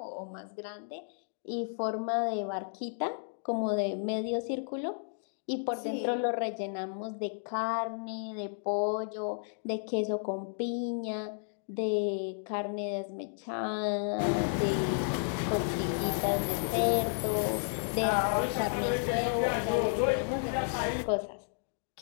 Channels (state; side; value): silent; right; digital silence